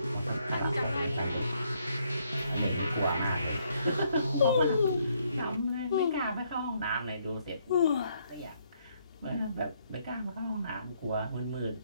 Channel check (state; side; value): inverted; both; correlation -0.71